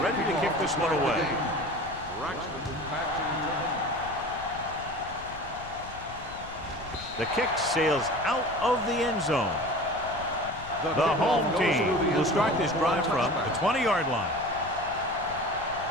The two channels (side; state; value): left; noise; rumble, 15 dB below the sound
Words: to kick this one away. The kick sails out of the end zone. The home team will start this drive from the 20-yard line.